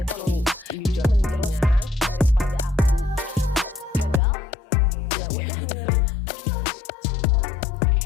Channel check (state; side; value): drops out; right; at 4.2 s